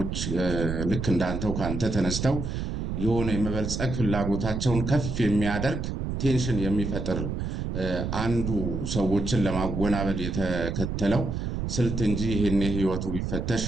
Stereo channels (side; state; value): right; noise; rumble, 3 dB below the sound